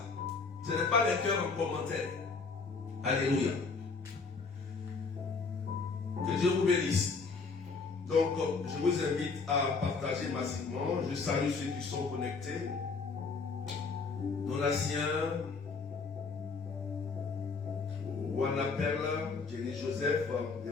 Ce n'est pas les cœurs en commentaire. Alléluia. Que Dieu vous bénisse. Donc, je vous invite à partager massivement. Je salue ceux qui sont connectés. Donatien, Wana Perla, Jenny Joseph,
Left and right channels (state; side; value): quieter; right; 4.6 dB